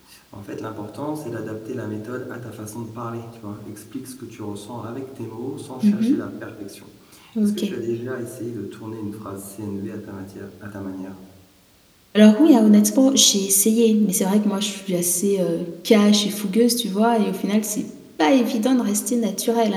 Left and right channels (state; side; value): identical; both; correlation 1.00